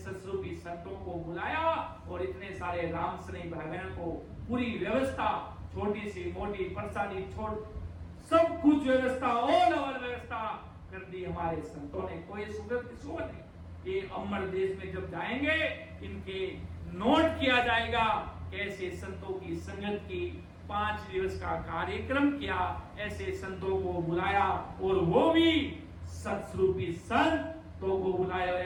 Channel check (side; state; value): both; identical; correlation 1.00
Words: संतों को बुलाया और इतने सारे राम स्नेही भाई बहनों को पूरी व्यवस्था, छोटी सी मोटी प्रसादी छोड़ सब कुछ व्यवस्था, ऑल ओवर व्यवस्था कर दी हमारे संतों ने। कोई सुगत किसको नहीं। ये अमर देश में जब जाएंगे, इनके नोट किया जाएगा कैसे संतों की संगत की 5 दिवस का कार्यक्रम किया, ऐसे संतों को बुलाया और वो भी सत्स्वरूपी संत तो को बुलायो